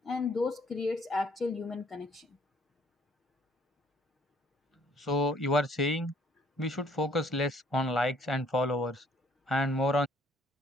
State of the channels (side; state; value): both; normal; correlation 0.62